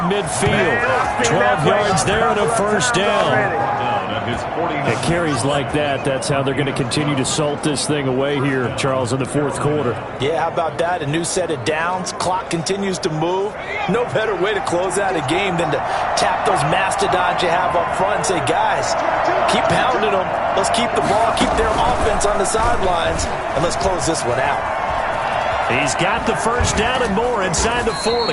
midfield. 12 yards there and a first down. It carries like that. That's how they're going to continue to salt this thing away here, Charles, in the fourth quarter. Yeah, how about that? A new set of downs. Clock continues to move. No better way to close out a game than to tap those mastodons you have up front and say, guys, keep pounding them. Let's keep the ball, keep their offense on the sidelines, and let's close this one out. He's got the first down and more inside the 40.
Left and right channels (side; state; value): both; identical; correlation 1.00